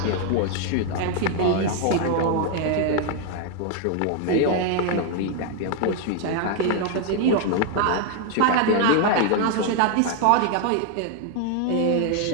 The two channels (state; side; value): different; both; correlation 0.00